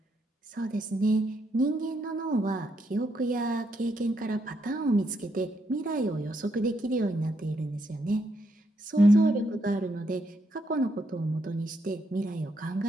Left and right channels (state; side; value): normal; both; correlation 0.77